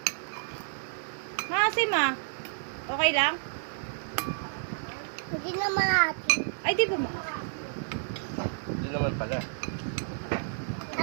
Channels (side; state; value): left; silent; digital silence